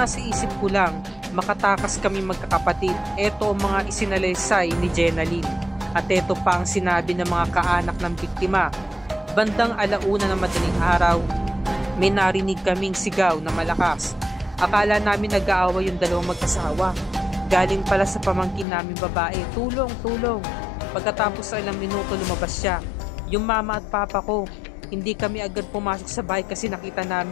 isip ko lang, makatakas kami magkakapatid. Ito ang mga isinalaysay ni Jenaline. At ito pa ang sinabi ng mga kaanak ng biktima. Bandang 1:00 ng madaling araw, may narinig kaming sigaw na malakas. Akala namin nag-aaway yung dalawang magkasawa. Galing pala sa pamangkin namin babae, tulong, tulong. Pagkatapos sa ilang minuto lumabas siya. Yung mama at papa ko, hindi kami agad pumasok sa bahay kasi nakita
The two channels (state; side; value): drops out; right; at 18.7 s